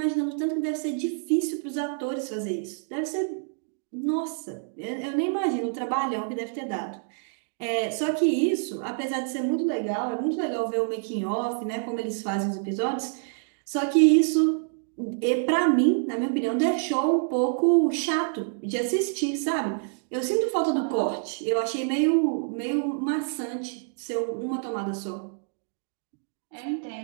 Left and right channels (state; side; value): silent; left; digital silence